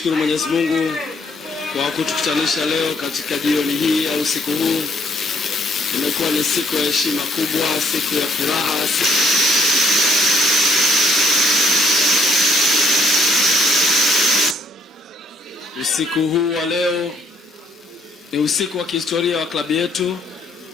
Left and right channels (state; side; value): normal; both; correlation 0.65